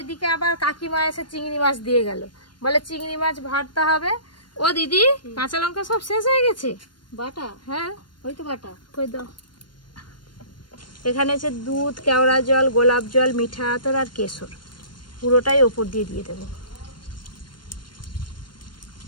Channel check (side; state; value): right; late; 0.72 ms